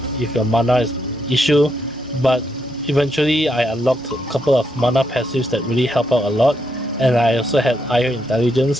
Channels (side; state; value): both; normal; correlation 0.79